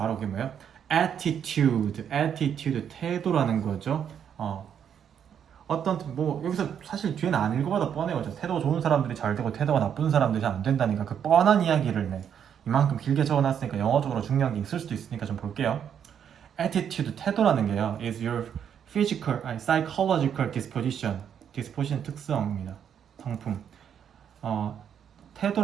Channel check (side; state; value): left; quieter; 8.5 dB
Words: 그게 뭐예요? attitude, 태도라는 거죠. 여기서 사실 뒤에는 안 읽어봐도 뻔해요. 태도가 좋은 사람들이 잘 되고 태도가 나쁜 사람들이 잘 안 된다니까 그 뻔한 이야기를 이만큼 길게 적어놨으니까 영어적으로 중요한 게 있을 수도 있으니까 좀 볼게요. attitude, 태도라는 게요, is your psychological disposition 특성입니다. 성품.